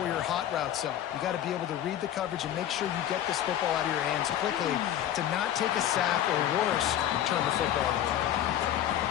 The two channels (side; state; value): right; quieter; 11.2 dB